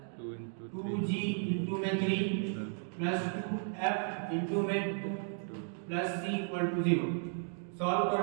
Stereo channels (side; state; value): left; silent; digital silence